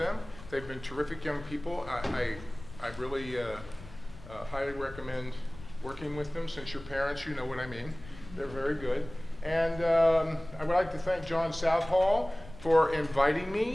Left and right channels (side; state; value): left; noise; rumble, 17 dB below the sound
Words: They've been terrific young people. I really highly recommend working with them. Since you're parents, you know what I mean. They're very good. And I would like to thank John Southall for inviting